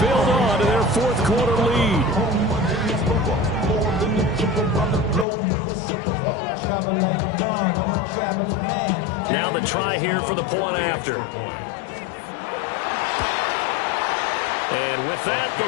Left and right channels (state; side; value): drops out; right; at 5.2 s